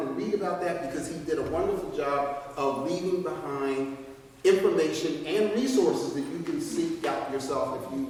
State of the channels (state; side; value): identical; both; correlation 1.00